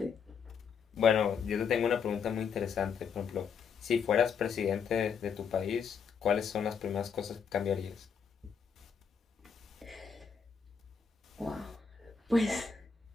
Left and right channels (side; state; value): right; quieter; 6.3 dB